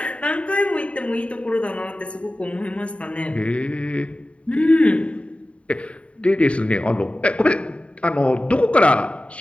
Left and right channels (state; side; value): late; right; 0.062 ms